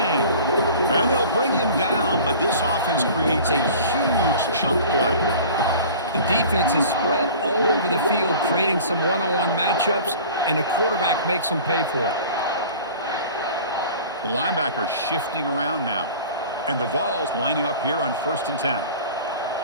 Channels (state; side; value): inverted; both; correlation -0.42